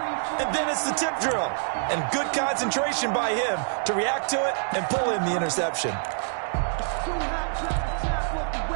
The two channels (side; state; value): left; silent; digital silence